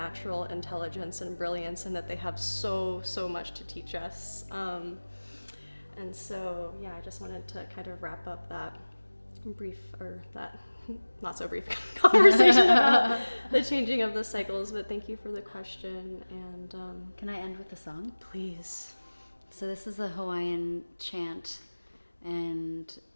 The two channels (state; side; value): inverted; both; correlation -1.00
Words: intelligence and brilliance, and that they have so much to teach us, and so I just wanted to kind of wrap up that brief, or that not so brief conversation about the changing of the cycles. But thank you for the question. And Can I end with a song? Please. So this is a Hawaiian chant, and